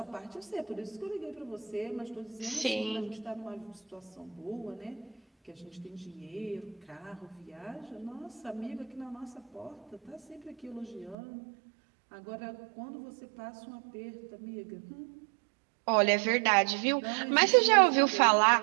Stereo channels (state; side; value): drops out; left; at 11.2 s